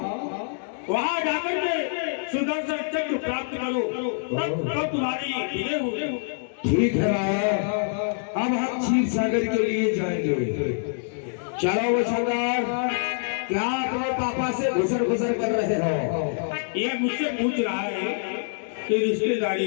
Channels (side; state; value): right; silent; digital silence